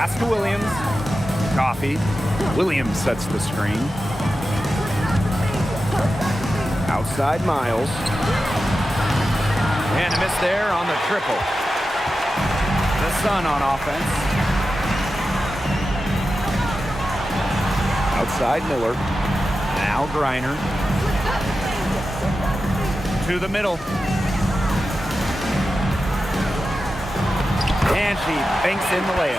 to Williams. Coffee. Williams sets the screen. Outside Miles. And a miss there on the triple. The Sun on offense. Outside Miller. Now Griner. To the middle. And she banks in the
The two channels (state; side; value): normal; both; correlation 0.92